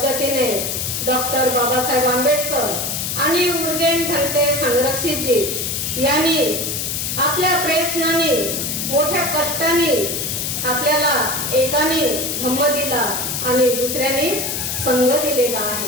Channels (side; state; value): left; noise; hiss, 2 dB below the sound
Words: डॉक्टर बाबासाहेब आंबेडकर आणि उर्गेन भंते संघरक्षितजी यांनी आपल्या प्रयत्नाने मोठ्या कष्टाने आपल्याला एकाने धम्म दिला आणि दुसऱ्याने संघ दिलेला